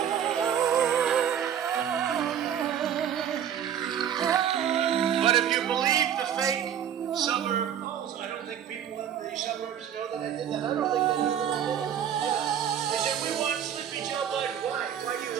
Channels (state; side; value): quieter; left; 9.4 dB